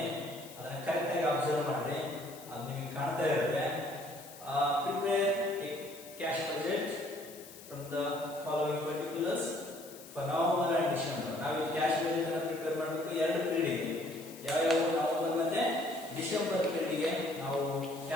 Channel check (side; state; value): left; noise; hiss, 17 dB below the sound